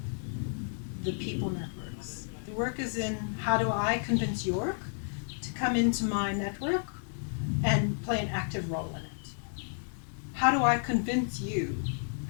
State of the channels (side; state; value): right; silent; 57 dB below the other